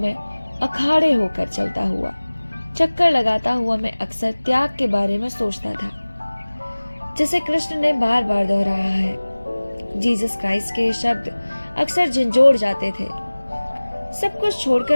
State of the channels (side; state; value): both; inverted; correlation -1.00